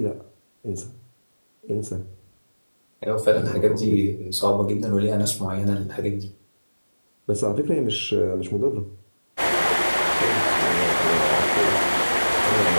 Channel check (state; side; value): inverted; both; correlation -1.00